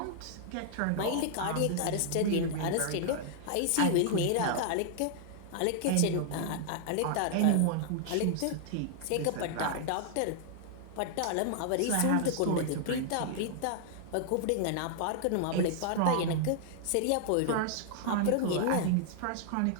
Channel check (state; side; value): different; both; correlation -0.01